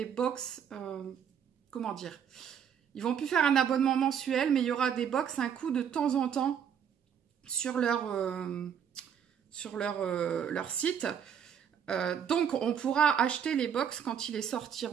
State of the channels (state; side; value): quieter; left; 8.1 dB